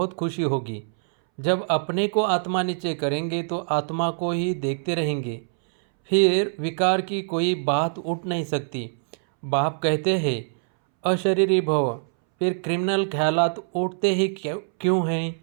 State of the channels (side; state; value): left; silent; 62 dB below the other